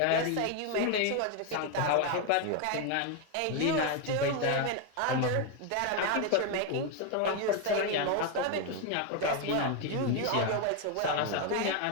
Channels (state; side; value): different; both; correlation 0.01